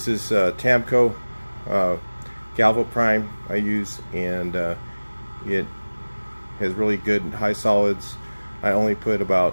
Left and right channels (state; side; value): inverted; both; correlation -1.00